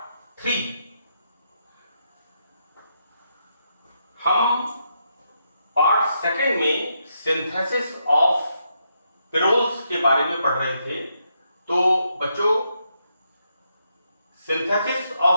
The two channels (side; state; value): both; inverted; correlation -0.80